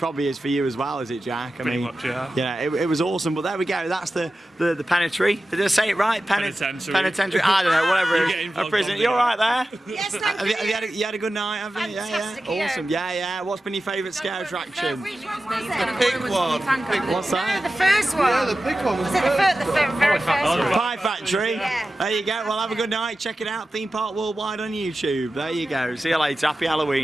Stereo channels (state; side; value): normal; both; correlation 0.94